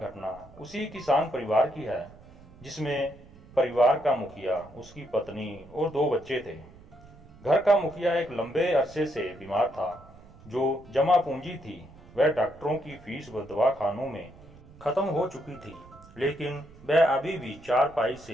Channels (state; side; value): noise; right; rumble, 22 dB below the sound